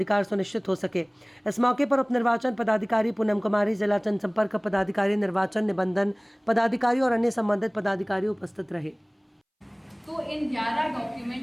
सुनिश्चित हो सके। इस मौके पर उप निर्वाचन पदाधिकारी पूनम कुमारी, जिला जनसंपर्क पदाधिकारी, निर्वाचन निबंधन पदाधिकारी और अन्य संबंधित पदाधिकारी उपस्थित रहे। तो इन 11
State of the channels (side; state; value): both; identical; correlation 1.00